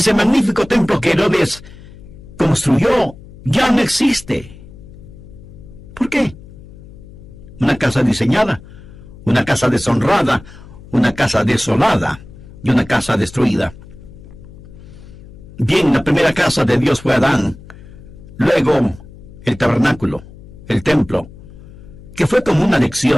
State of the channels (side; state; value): left; noise; hum, 18 dB below the sound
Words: magnífico templo que Herodes construyó ya no existe. ¿Por qué? Una casa diseñada, una casa deshonrada, una casa desolada y una casa destruida. Bien, la primera casa de Dios fue Adán. Luego, el tabernáculo, el templo, que fue como una